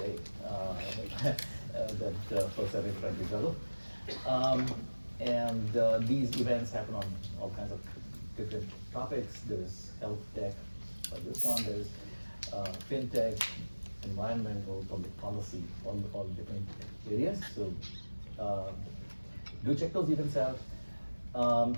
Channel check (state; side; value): inverted; both; correlation -1.00